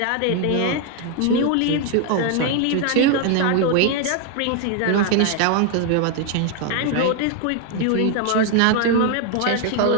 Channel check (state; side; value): different; both; correlation 0.01